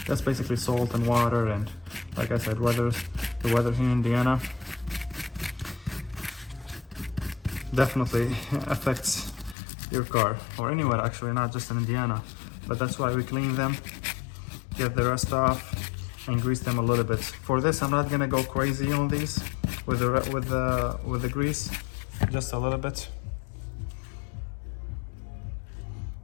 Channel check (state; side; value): drops out; right; at 9.6 s